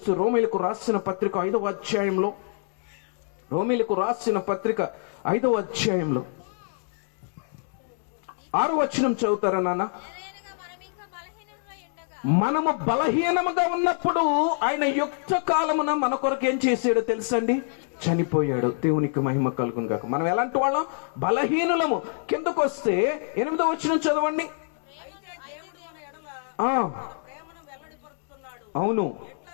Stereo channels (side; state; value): right; silent; 61 dB below the other